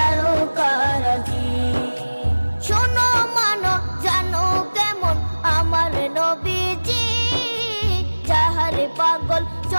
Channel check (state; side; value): inverted; both; correlation -1.00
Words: শোনো মানো জানো কেমন আমার নবীজি, যাহার পাগল